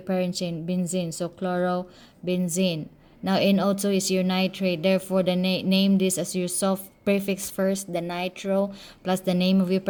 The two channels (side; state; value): both; identical; correlation 1.00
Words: parent chain, benzene. So chlorobenzene. Now NO2 is your nitrate. Therefore, the name this as your soft prefix first, the nitro, plus the name of your